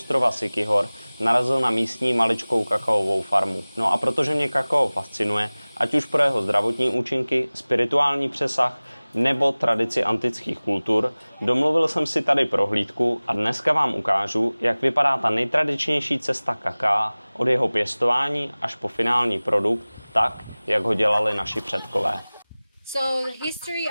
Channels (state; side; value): inverted; both; correlation -1.00